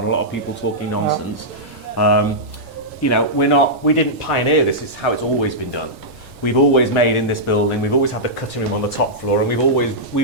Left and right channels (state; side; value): normal; both; correlation -0.11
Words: a lot of people talking nonsense. We didn't pioneer this. It's how it's always been done. We've always made in this building. We've always had the cutting room on the top floor, and we've